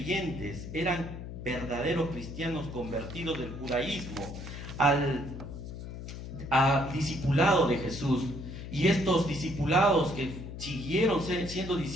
eran verdaderos cristianos convertidos del judaísmo al discipulado de Jesús. Y estos discipulados que siguieron siendo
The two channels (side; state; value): left; noise; hum, 9 dB below the sound